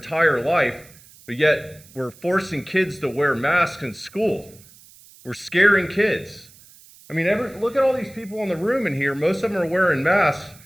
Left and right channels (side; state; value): right; noise; hiss, 24 dB below the sound